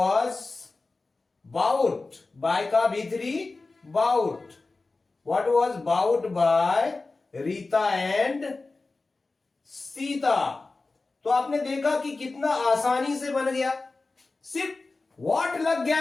बाउट, बाय का भीतरी bought, what was bought by Rita and Sita. तो आपने देखा कि कितना आसानी से बन गया, सिर्फ व्हाट लग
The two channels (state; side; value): quieter; right; 3.6 dB